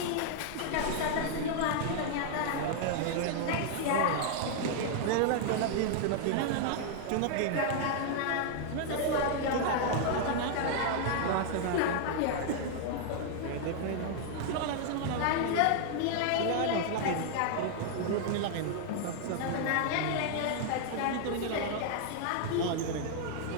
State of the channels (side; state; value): both; different; correlation 0.00